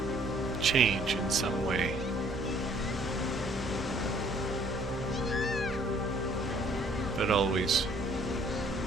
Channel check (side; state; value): both; normal; correlation 0.60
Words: change in some way. But always